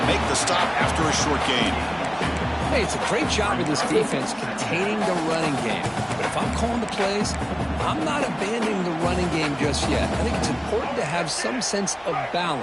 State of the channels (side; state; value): both; identical; correlation 1.00